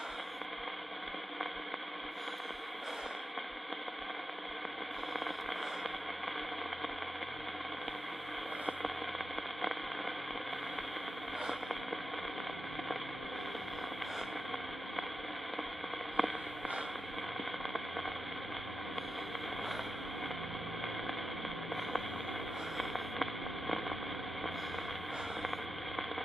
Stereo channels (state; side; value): normal; both; correlation 0.90